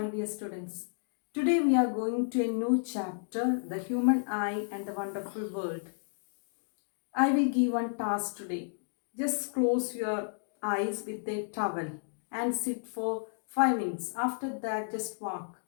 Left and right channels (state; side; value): silent; right; digital silence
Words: dear students. Today we are going to a new chapter, The Human Eye and the Wonderful World. I will give one task today. Just close your eyes with a towel and sit for 5 minutes. After that, just walk.